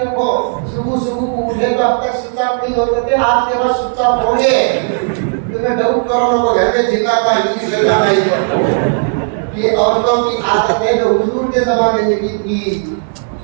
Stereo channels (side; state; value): left; silent; digital silence